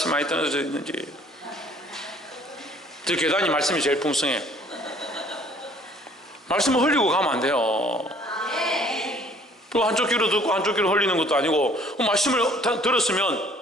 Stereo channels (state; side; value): normal; both; correlation 0.56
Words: 많이 떨어져 있는지. 저 계단이 말씀이 제일 풍성해요. 말씀을 흘리고 가면 안 돼요. 또 한쪽 귀로 듣고 한쪽 귀로 흘리는 것도 아니고, 말씀을 들었으면